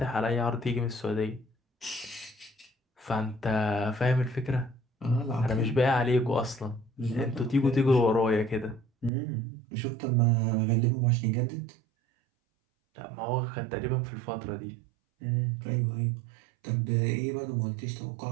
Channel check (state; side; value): drops out; left; at 9.1 s